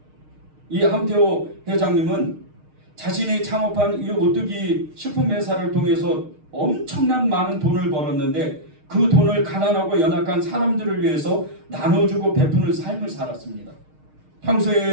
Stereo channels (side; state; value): left; late; 6.5 ms